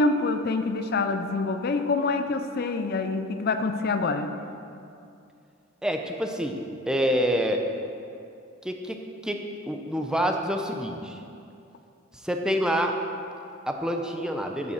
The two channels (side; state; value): both; normal; correlation 0.45